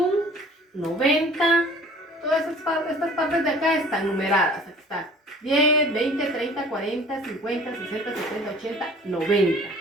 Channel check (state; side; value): normal; both; correlation 0.49